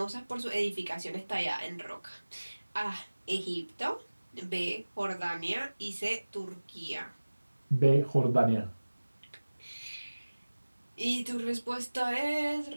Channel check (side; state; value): both; inverted; correlation -1.00